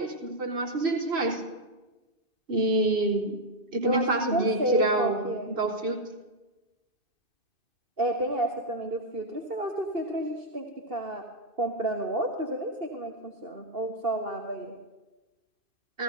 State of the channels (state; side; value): late; left; 2.5 ms